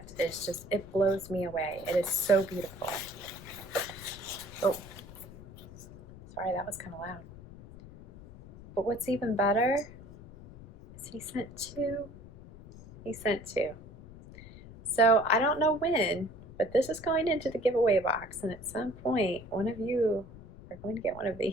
is just, it blows me away. It is so beautiful. Oh, sorry, that was kind of loud. But what's even better is he sent two. He sent two. So I don't know when, but this is going into the giveaway box, and at some point, one of you are going to get one of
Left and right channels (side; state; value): left; noise; rumble, 17 dB below the sound